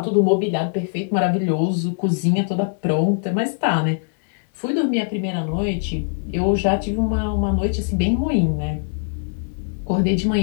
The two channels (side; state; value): right; silent; 63 dB below the other